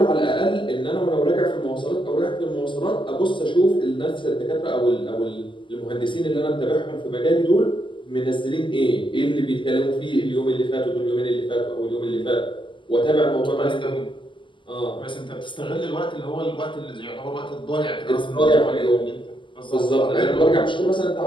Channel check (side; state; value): right; late; 0.24 ms